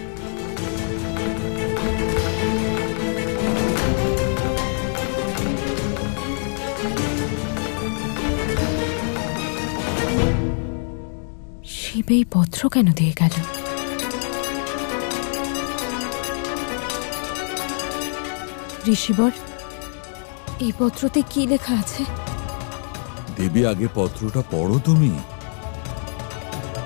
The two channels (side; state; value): right; silent; 56 dB below the other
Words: শিব এই পত্র কেন দিয়ে গেল? ঋষিবর, এই পত্রতে কি লেখা আছে? দেবী, আগে পত্রটা পড়ো তুমি।